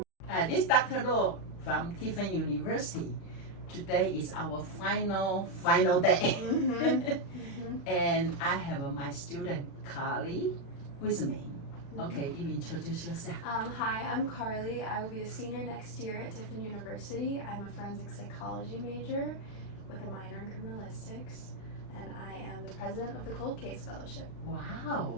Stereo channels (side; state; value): right; late; 36 ms